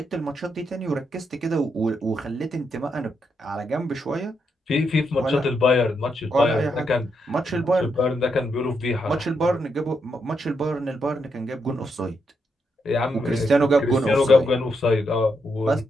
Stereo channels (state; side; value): normal; both; correlation 0.80